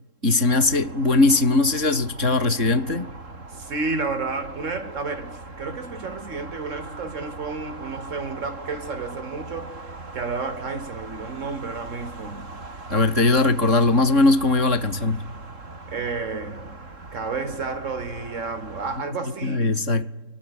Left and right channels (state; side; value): late; left; 3.7 ms